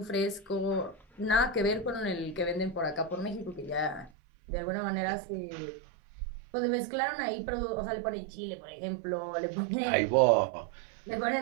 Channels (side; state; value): left; drops out; at 4.1 s